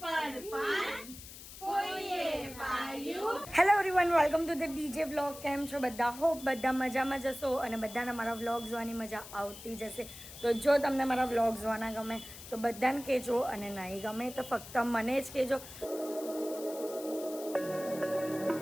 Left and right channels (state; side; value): noise; left; hiss, 14 dB below the sound